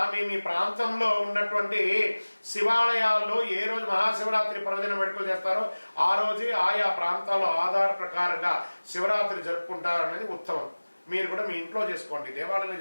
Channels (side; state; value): both; inverted; correlation -1.00